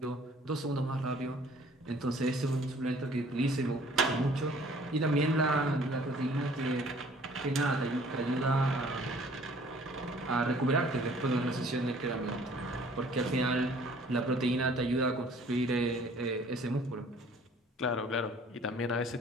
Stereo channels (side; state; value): both; normal; correlation 0.55